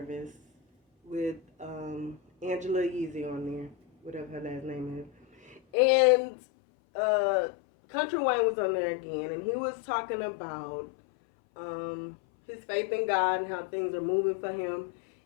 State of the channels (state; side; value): drops out; right; at 5.6 s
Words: with Angela Yeezy on there, whatever her last name is, and Country Wayne was on there again, and he was talking about his faith in God and how things are moving for him,